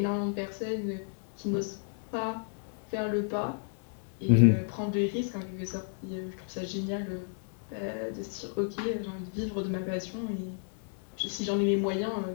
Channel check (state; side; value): silent; right; digital silence